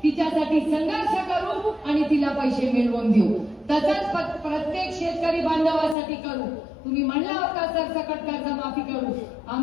तिच्यासाठी संघर्ष करू आणि तिला पैसे मिळवून देऊ. तसंच प्रत्येक शेतकरी बांधवासाठी करू. तुम्ही म्हणला होता सरसकट कर्जमाफी करू,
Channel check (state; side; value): drops out; right; at 6.0 s